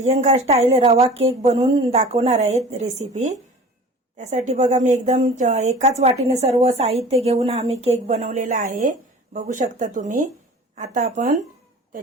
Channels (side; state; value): both; normal; correlation 0.42